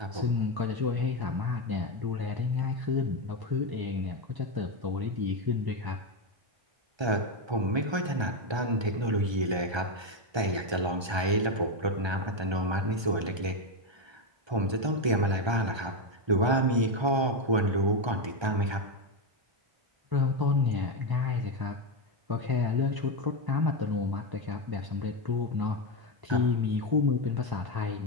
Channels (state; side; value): late; left; 1.3 ms